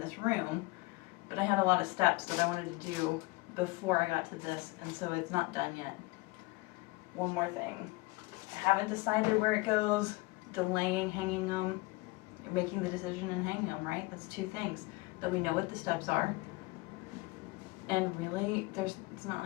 room, but I had a lot of steps that I wanted to do before I got to this, and so it's not done yet. One more thing. I haven't decided where it goes, delaying hanging them, making the decision and hanging them, right? That's two things. That we know what the steps are, and really, it's not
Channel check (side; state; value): right; quieter; 23.1 dB